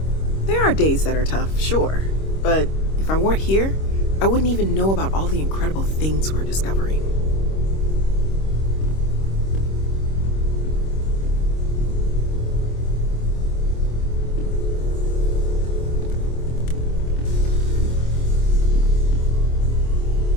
There are days that are tough, sure. But if I weren't here, I wouldn't even know about all the incredible things we're discovering.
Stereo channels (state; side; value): late; right; 26 ms